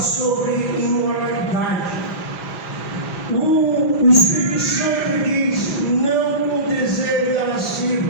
imoralidade. O Espírito Santo diz: não com o desejo da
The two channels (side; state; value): right; late; 5.0 ms